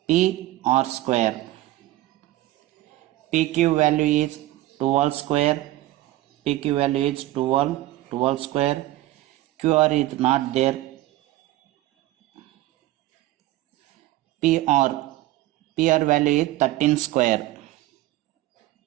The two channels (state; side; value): quieter; left; 16.5 dB